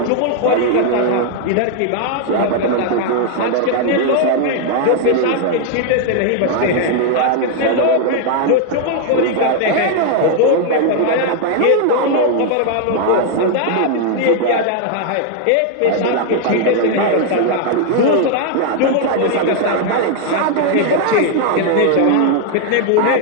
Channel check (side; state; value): both; different; correlation 0.00